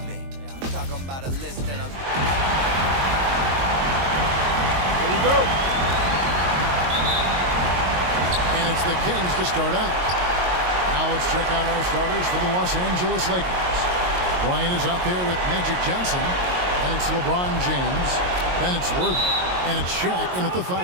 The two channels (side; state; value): left; late; 22 ms